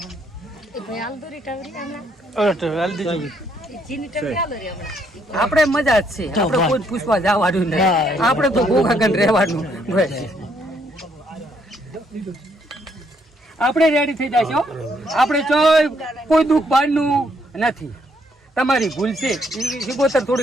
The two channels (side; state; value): both; normal; correlation 0.71